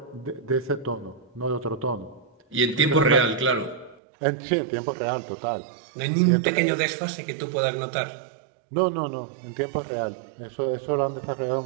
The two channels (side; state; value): left; drops out; at 4.0 s